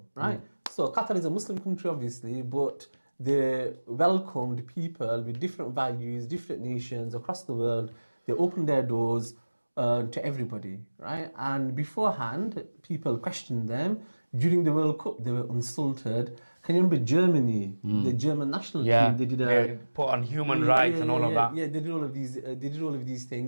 right? So Qatar is a Muslim country, obviously, but they welcomed people with different values, different nations across the world. They opened their doors to everybody, right? And beforehand, people questioned them. During the World Cup, they were insulted. Can you remember Germany, the German national team? They did put on human rights and all of that. Yeah, they did all of these. They did all of these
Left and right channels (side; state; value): both; inverted; correlation -1.00